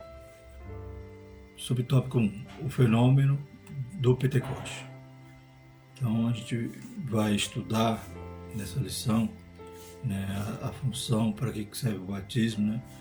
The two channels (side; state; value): both; identical; correlation 1.00